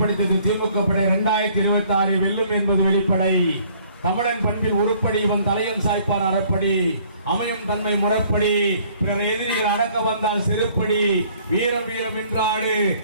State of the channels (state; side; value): inverted; both; correlation -0.59